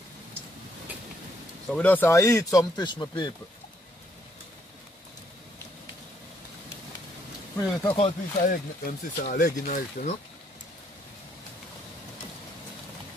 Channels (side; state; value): both; normal; correlation 0.71